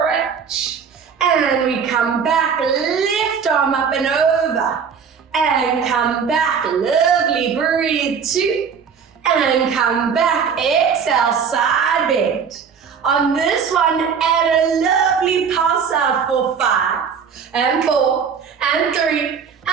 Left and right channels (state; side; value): quieter; left; 6.6 dB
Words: And we come back, left arm up and over. And come back, lovely, breathe two. And come back, exhale, side bend. On this one, add a lovely pulse out for 5. And 4, and 3,